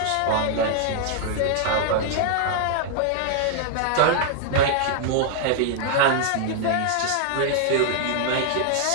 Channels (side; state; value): both; different; correlation -0.01